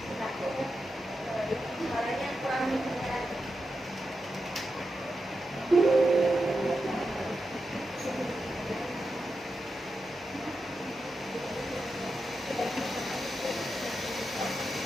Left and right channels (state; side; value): normal; both; correlation 0.88